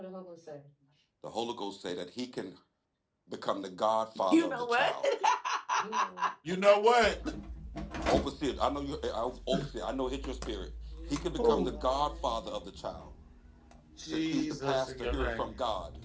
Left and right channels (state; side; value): identical; both; correlation 1.00